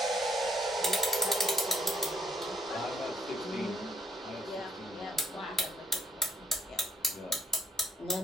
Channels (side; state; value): both; normal; correlation 0.66